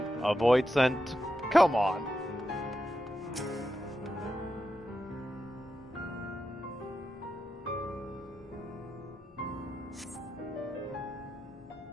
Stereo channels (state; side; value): normal; both; correlation 0.88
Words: a void sent. Come on.